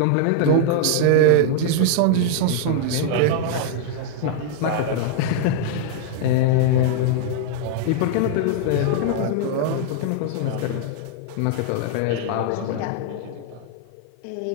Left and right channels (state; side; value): different; both; correlation 0.00